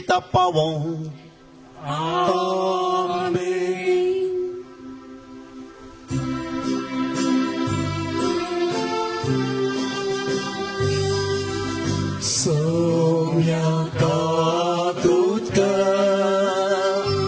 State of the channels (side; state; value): both; identical; correlation 1.00